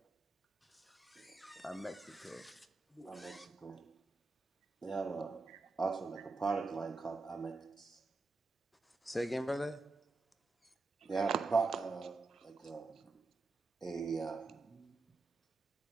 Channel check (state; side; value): quieter; left; 3.6 dB